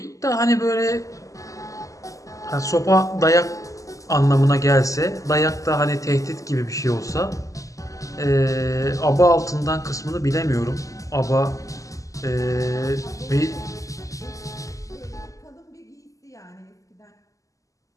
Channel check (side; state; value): right; late; 0.16 ms